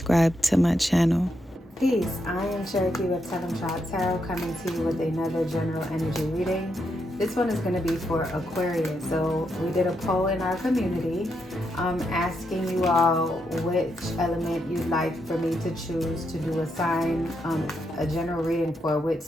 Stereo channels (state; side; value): normal; both; correlation 0.81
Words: to my channel. Peace, I am Cherokee with Tellemtribe Tarot, coming to you with another general energy reading. This one is going to be for Aquarius. So we did a poll in our community asking you all which element you'd like for me to choose to do a sign, a general reading for which